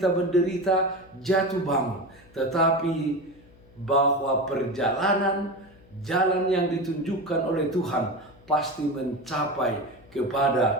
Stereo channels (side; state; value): left; noise; hum, 25 dB below the sound